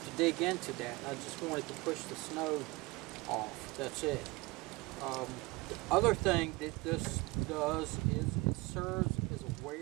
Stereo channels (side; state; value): left; quieter; 23.1 dB